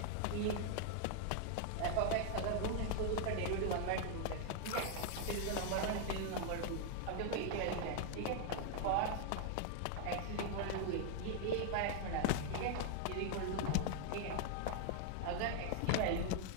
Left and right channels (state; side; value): different; both; correlation 0.00